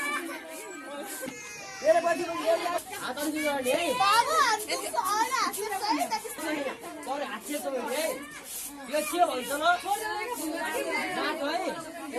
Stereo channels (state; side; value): identical; both; correlation 1.00